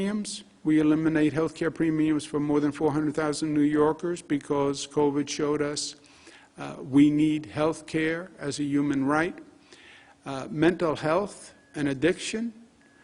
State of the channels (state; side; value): identical; both; correlation 1.00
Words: We eliminate health care premiums for more than 400,000 New Yorkers because COVID showed us we need health care as a human right. Mental health and addiction.